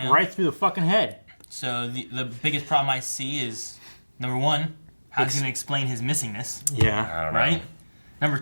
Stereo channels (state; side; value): inverted; both; correlation -1.00